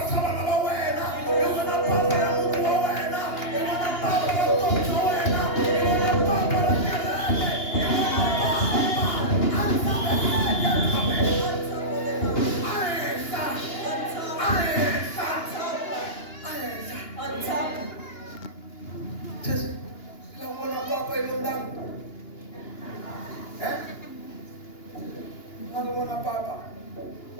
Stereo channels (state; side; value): late; right; 2.8 ms